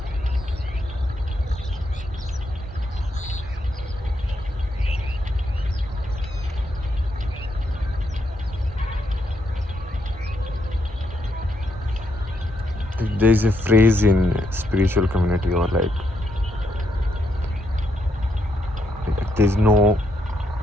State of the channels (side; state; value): both; normal; correlation 0.78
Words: there's a phrase in spiritual community or there's no